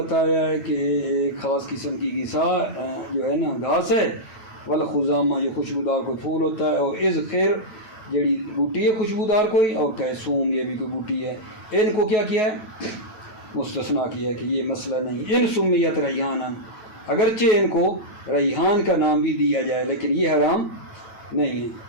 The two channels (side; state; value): right; late; 9.0 ms